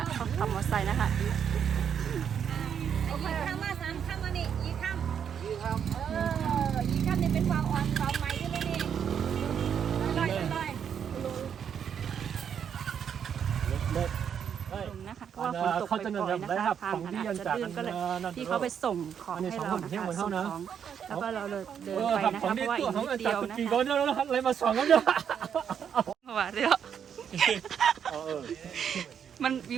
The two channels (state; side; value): quieter; left; 8.1 dB